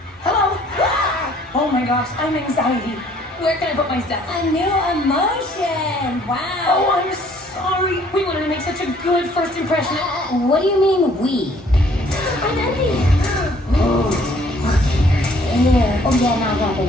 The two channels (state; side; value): normal; both; correlation 0.60